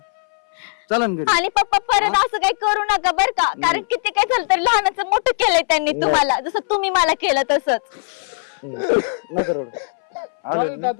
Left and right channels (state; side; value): silent; right; 63 dB below the other